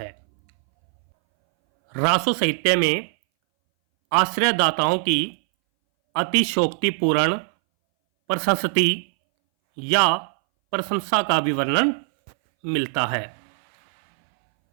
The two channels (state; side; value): silent; left; 62 dB below the other